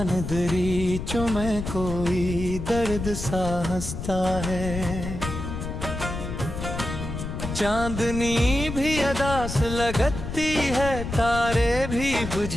दरीचों में कोई दर्द सा हंसता है। चांदनी भी अदास लगती है, तारे भी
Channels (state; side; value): noise; left; rumble, 6 dB below the sound